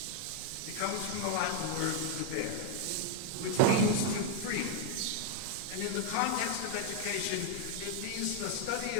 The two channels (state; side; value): different; both; correlation 0.00